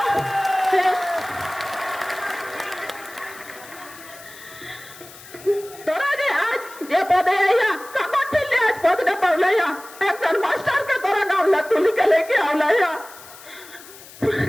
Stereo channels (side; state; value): left; noise; hiss, 19 dB below the sound